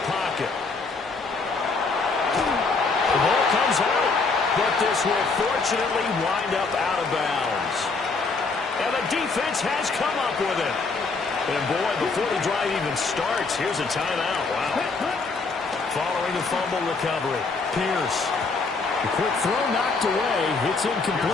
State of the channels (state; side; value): quieter; right; 4.2 dB